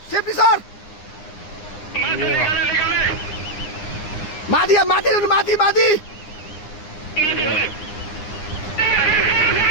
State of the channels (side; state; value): right; late; 9.8 ms